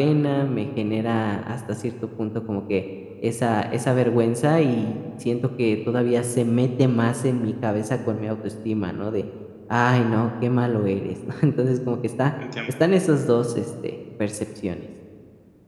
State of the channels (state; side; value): identical; both; correlation 1.00